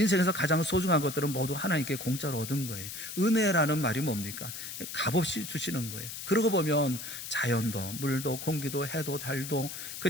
가장 소중한 것들은 모두 하나님께 공짜로 얻은 거예요. 은혜라는 말이 뭡니까? 값없이 주시는 거예요. 그러고 보면 자연도, 물도, 공기도, 해도, 달도,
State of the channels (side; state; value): left; noise; hiss, 8 dB below the sound